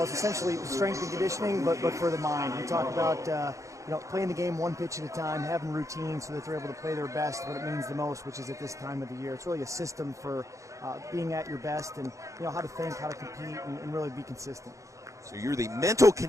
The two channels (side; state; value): left; late; 0.15 ms